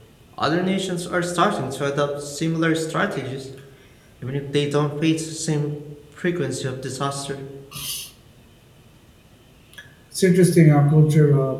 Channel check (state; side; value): identical; both; correlation 1.00